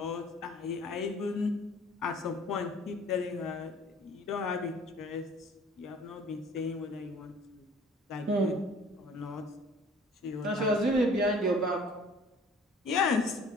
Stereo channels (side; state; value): both; normal; correlation 0.51